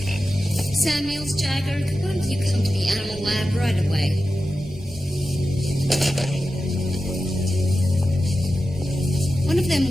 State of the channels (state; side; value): normal; both; correlation 0.92